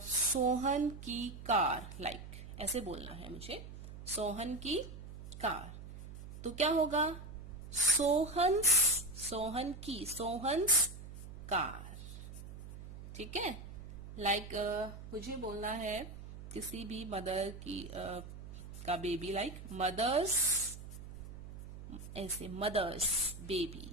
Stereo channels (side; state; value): right; noise; hum, 12 dB below the sound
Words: की कार, लाइक ऐसे बोलना है मुझे, सोहन की कार, तो क्या होगा? सोहन्स कार, ठीक है। लाइक मुझे बोलना है किसी भी मदर की का बेबी, लाइक मदर्स, ऐसे मदर्स बेबी,